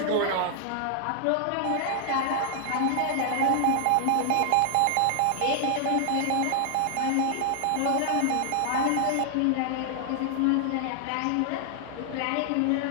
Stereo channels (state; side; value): different; both; correlation -0.01